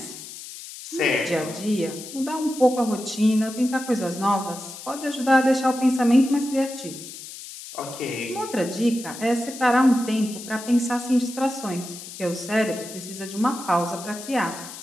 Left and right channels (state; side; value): noise; left; hiss, 13 dB below the sound